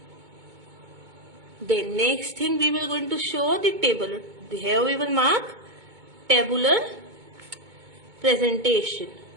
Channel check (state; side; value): late; left; 2.2 ms